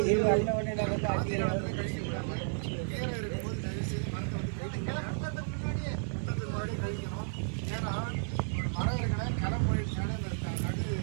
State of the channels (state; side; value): silent; left; 56 dB below the other